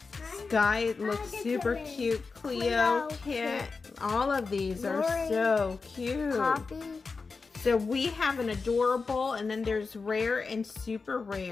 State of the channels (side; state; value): right; quieter; 4.5 dB